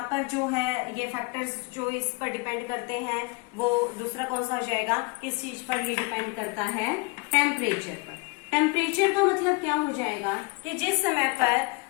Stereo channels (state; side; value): quieter; right; 29.3 dB